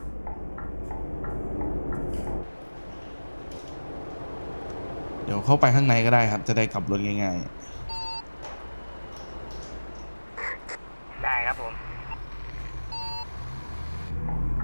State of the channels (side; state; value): both; inverted; correlation -1.00